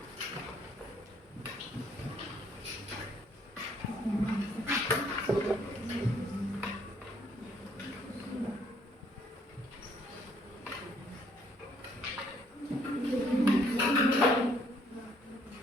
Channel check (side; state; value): both; normal; correlation 0.65